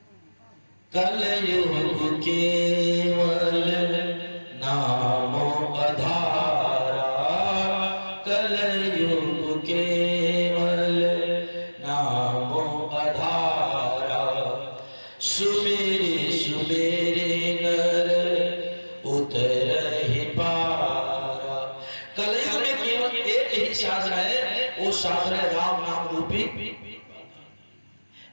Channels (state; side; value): inverted; both; correlation -1.00